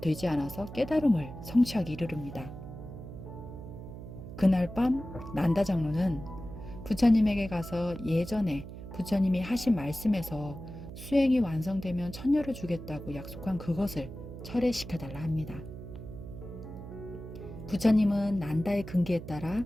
않아서 깨달음을 성취하기 이르릅니다. 그날 밤 난다 장로는 부처님에게 가서 예전에 부처님이 하신 말씀에서 수행이 완성되면 천녀를 주겠다고 약속한 그것을 철회시켜달라 합니다. 부처님은 난다의 근기에 따라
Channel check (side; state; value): right; noise; hum, 11 dB below the sound